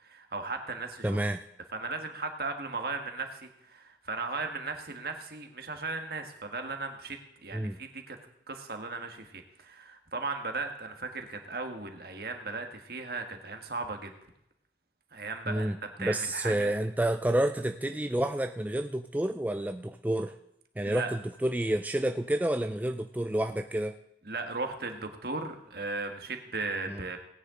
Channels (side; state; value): both; normal; correlation 0.66